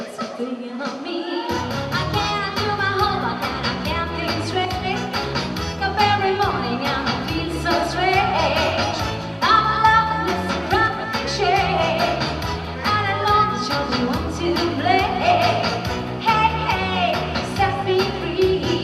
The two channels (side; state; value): both; identical; correlation 1.00